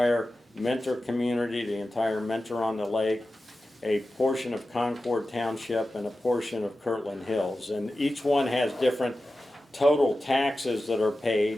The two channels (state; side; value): normal; both; correlation 0.93